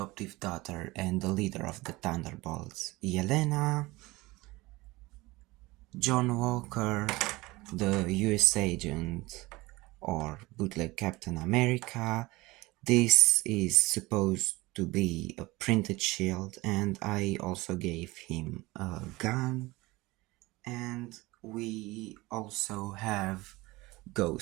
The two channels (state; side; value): quieter; left; 21.3 dB